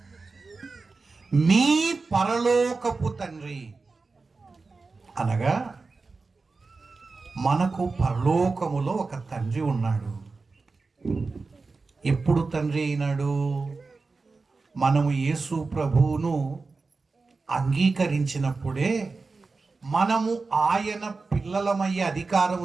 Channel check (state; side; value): quieter; left; 4.0 dB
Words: మీ పరలోకపు తండ్రి అనగా మనకు పరలోకములో ఒక తండ్రి ఉన్నాడు. ఎప్పుడు తండ్రి అయినాడు? మనము యేసు ప్రభువును అంగీకరించినప్పుడే మనము ఆయన పిల్లలమయ్యే